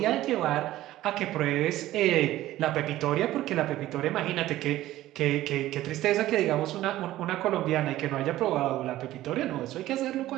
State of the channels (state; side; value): quieter; left; 15.0 dB